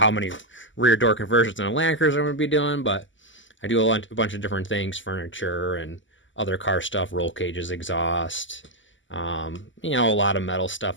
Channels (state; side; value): late; right; 0.55 ms